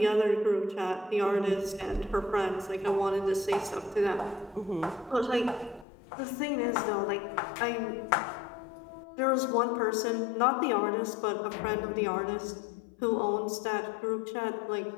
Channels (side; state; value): right; drops out; at 5.9 s